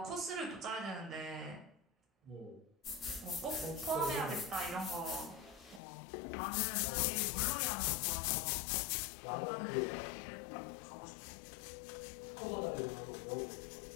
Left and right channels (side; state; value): right; drops out; at 5.8 s